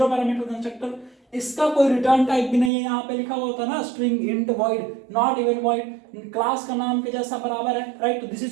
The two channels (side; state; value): left; drops out; at 2.7 s